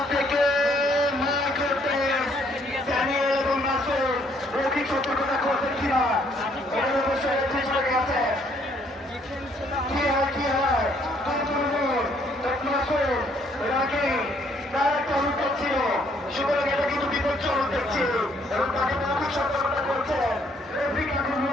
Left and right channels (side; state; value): both; normal; correlation 0.66